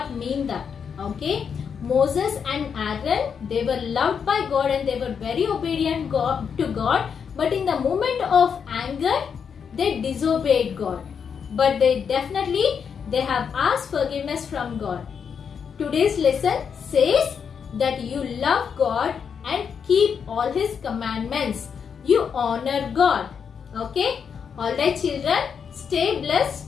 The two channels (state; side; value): quieter; right; 6.8 dB